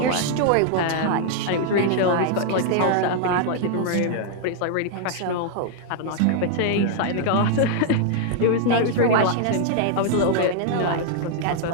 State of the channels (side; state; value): both; different; correlation -0.01